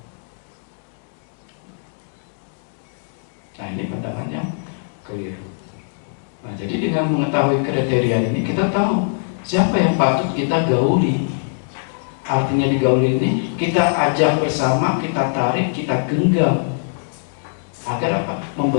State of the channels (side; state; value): right; silent; digital silence